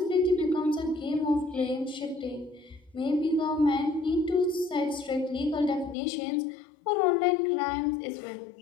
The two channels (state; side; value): drops out; right; at 6.0 s